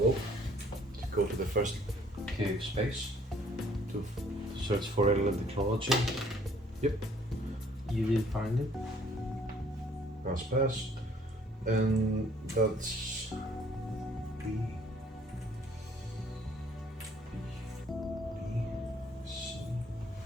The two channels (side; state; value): both; normal; correlation 0.60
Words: to go to the first cave space to search for alien technology. Yep, You did find it. pass. And that's B. C.